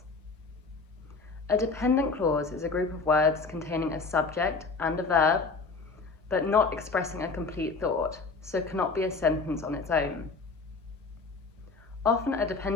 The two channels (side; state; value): right; quieter; 4.2 dB